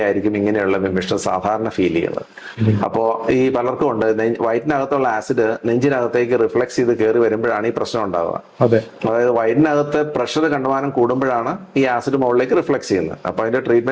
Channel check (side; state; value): both; identical; correlation 1.00